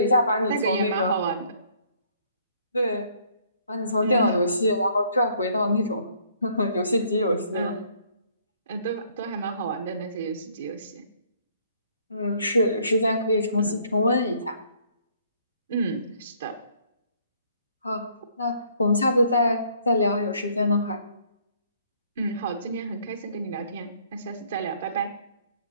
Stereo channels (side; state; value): both; inverted; correlation -0.63